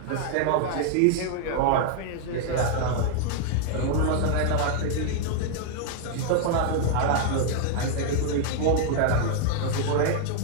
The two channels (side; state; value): both; different; correlation 0.00